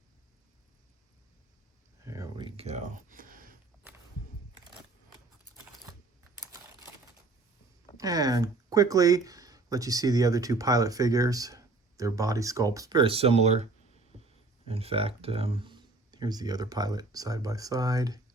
there we go. And quickly let you see the other two pilot figures. Their body sculpts very similar. In fact, here's the other pilot side by side.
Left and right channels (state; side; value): quieter; left; 3.4 dB